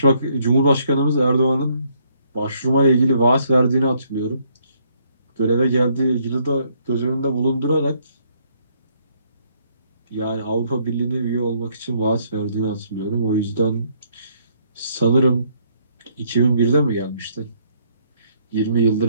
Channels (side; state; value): both; inverted; correlation -0.69